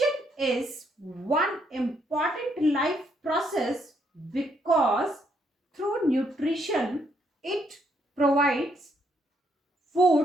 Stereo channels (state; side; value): normal; both; correlation 0.73